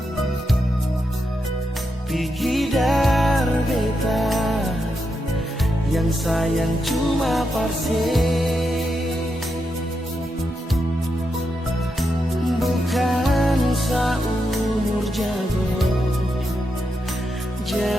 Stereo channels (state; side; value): normal; both; correlation 0.85